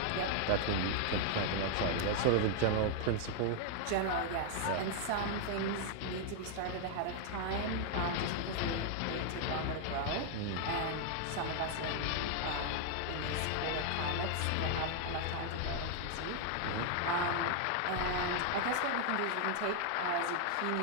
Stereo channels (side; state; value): both; different; correlation 0.00